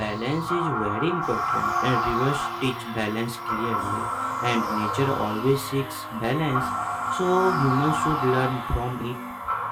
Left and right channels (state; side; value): identical; both; correlation 1.00